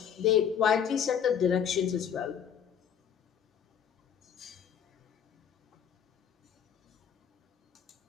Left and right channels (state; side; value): quieter; right; 8.2 dB